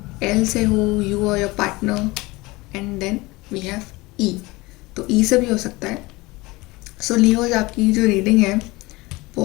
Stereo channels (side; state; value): right; quieter; 22.2 dB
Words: एल से हो, यू और your partner. And then we have E. तो ई से भी हो सकता है. सो लियोज, आपकी जो रीडिंग है